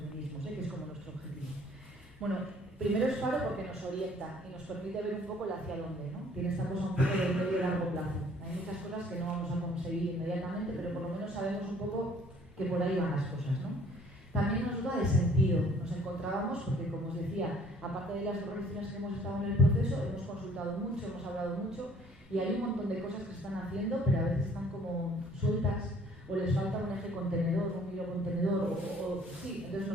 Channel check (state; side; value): normal; both; correlation 0.57